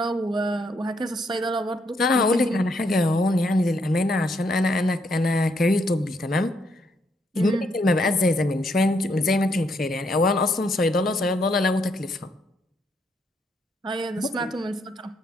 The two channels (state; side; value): normal; both; correlation 0.75